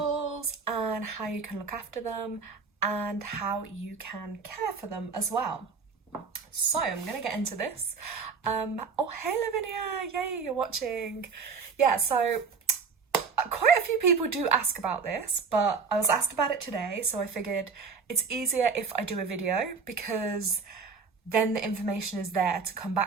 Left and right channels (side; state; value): left; quieter; 5.2 dB